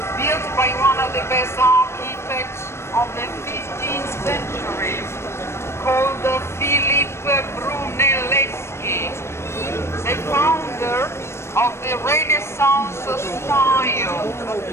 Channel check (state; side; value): late; right; 0.13 ms